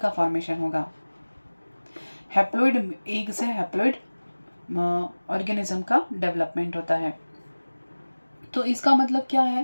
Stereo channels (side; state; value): both; inverted; correlation -1.00